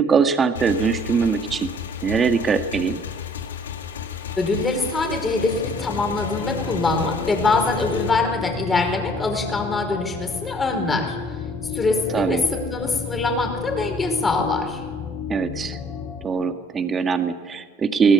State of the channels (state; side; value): normal; both; correlation 0.58